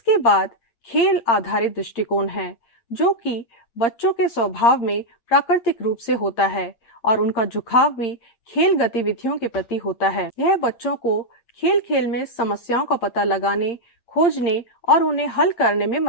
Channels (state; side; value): late; right; 8.7 ms